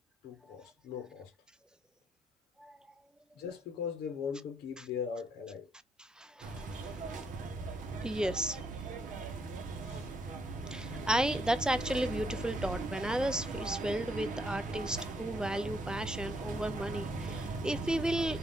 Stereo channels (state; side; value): normal; both; correlation 0.73